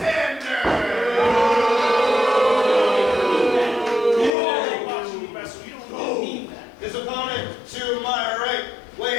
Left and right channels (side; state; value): right; drops out; at 4.3 s